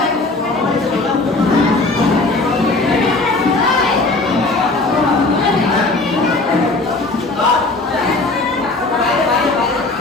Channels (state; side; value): quieter; right; 3.2 dB